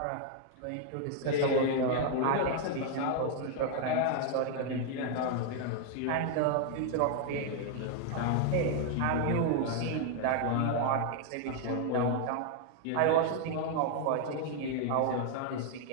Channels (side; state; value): both; different; correlation 0.00